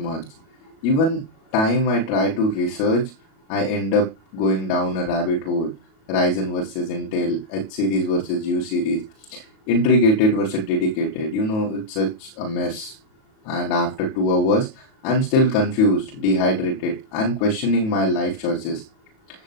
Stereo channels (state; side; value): late; right; 37 ms